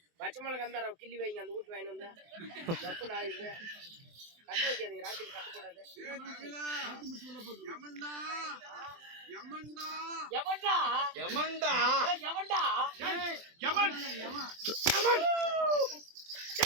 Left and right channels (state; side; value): late; left; 24 ms